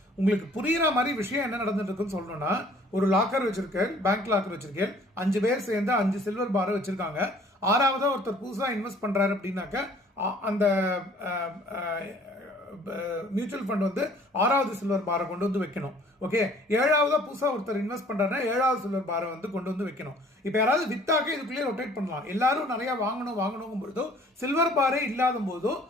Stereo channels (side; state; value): both; normal; correlation 0.55